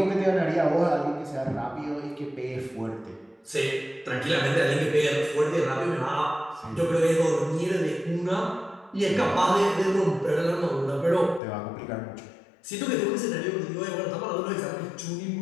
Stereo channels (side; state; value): right; drops out; at 11.4 s